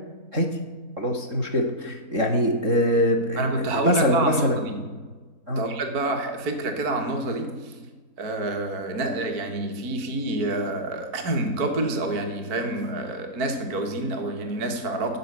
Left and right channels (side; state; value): left; late; 3.7 ms